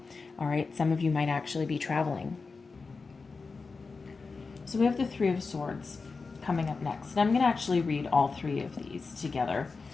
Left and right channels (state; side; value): quieter; right; 4.4 dB